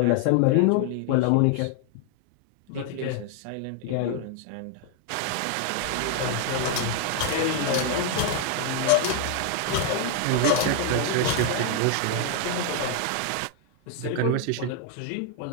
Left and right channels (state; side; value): different; both; correlation 0.00